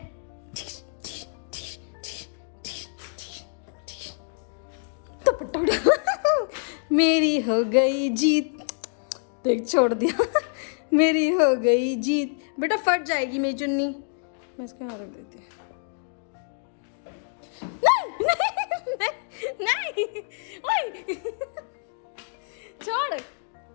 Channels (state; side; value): silent; right; 60 dB below the other